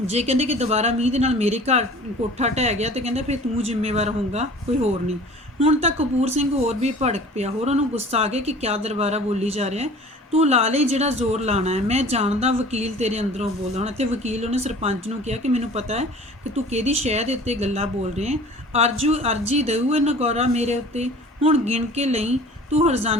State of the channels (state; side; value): normal; both; correlation 0.45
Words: ਜੇ ਕਹਿੰਦੇ ਕਿ ਦੁਬਾਰਾ ਮੀਂਹ ਦੇ ਨਾਲ ਮੇਰੇ ਘਰ ਕੋਠਾ ਢਹਿ ਗਿਆ ਤੇ ਕਹਿੰਦੇ ਫਿਰ ਤੂੰ ਜ਼ਿੰਮੇਵਾਰ ਹੋਊਗਾ, ਕੋਈ ਹੋਰ ਨਹੀਂ। ਹੁਣ ਤਾਂ ਕਪੂਰ ਸਿੰਘ ਹੋਰ ਵੀ ਭੜਕ ਪਿਆ, ਹੋਰ ਉਹਨੂੰ ਗੁੱਸਾ ਆ ਗਿਆ ਕਿ ਕਿਆ ਦਰਬਾਰਾ ਬੋਲੀ ਜਾ ਰਿਹਾ। ਤੂੰ ਲਾ ਲਈ ਜਿਹੜਾ ਜ਼ੋਰ ਲਾਣਾ ਹੈ, ਮੈਂ ਜਾਣਦਾ ਵਕੀਲ ਤੇਰੇ ਅੰਦਰੋਂ ਬੋਲਦਾ। ਹੁਣ ਇੱਥੇ ਵਕੀਲ ਉਹਨੇ ਸਰਪੰਚ ਨੂੰ ਕਿਹਾ ਕਿ ਮੈਨੂੰ ਪਤਾ ਹੈ ਕਿ ਤੂੰ ਕਿਹਦੀ ਸ਼ਹਿ ਦੇ ਉੱਤੇ ਗੱਲਾਂ ਬੋਲ ਰਿਹਾ। ਅਰਜੀ ਦੇਊ ਇਹ ਨਗੌਰਾ ਮੇਰੇ ਉੱਤੇ, ਹੁਣ ਗਿਣ ਕੇ ਲਈ ਤੂੰ